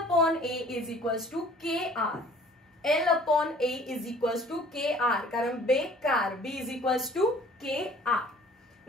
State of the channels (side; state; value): both; normal; correlation 0.52